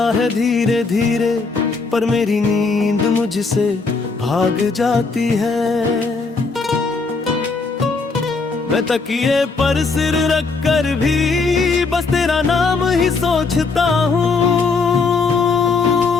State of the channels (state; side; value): quieter; right; 4.3 dB